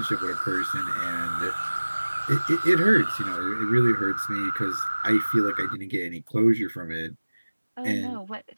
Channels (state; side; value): inverted; both; correlation -1.00